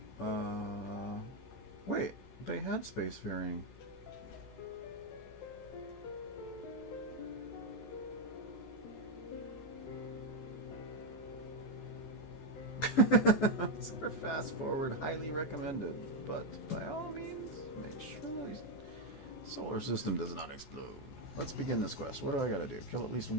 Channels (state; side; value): late; right; 14 ms